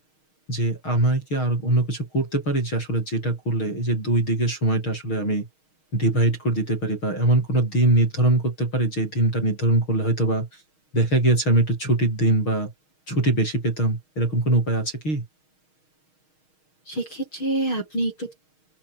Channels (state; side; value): late; right; 6.4 ms